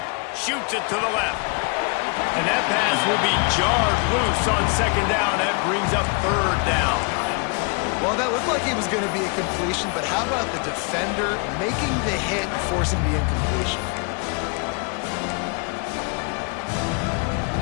Shoots it to the left. And that pass will be jarred loose on 2nd down. That brings up 3rd down. Well, that looked like it was going to be a completion, but how about the defender making the hit and forcing the incompletion?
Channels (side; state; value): right; quieter; 33.7 dB